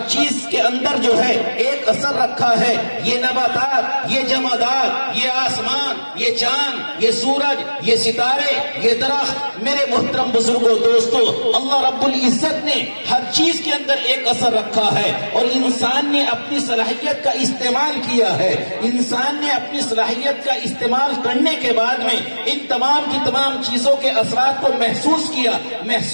چیز کے اندر جو ہے ایک اثر رکھا ہے۔ یہ نباتات، یہ جمادات، یہ آسمان، یہ چاند، یہ سورج، یہ ستارے، یہ درخت، میرے محترم بزرگوں دوستو، اللہ رب العزت نے ہر چیز کے اندر ایک اثر رکھا ہے، اور انسان نے اپنی صلاحیت کا استعمال کیا ہے۔ انسان نے اپنی صلاحیت کا استعمال کرنے کے بعد میں ان تمام کی تمام چیزوں کے اثرات کو محسوس کیا،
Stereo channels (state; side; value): inverted; both; correlation -1.00